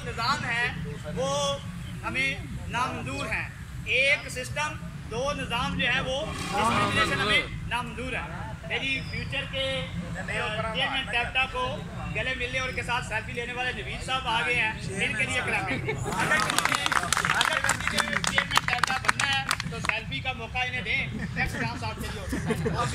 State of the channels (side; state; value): both; identical; correlation 1.00